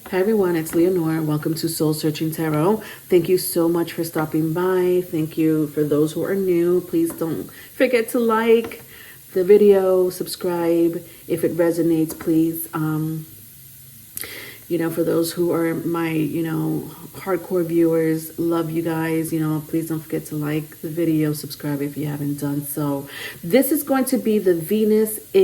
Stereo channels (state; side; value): identical; both; correlation 1.00